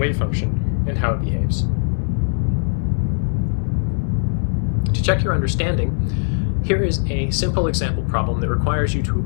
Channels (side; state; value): right; silent; 61 dB below the other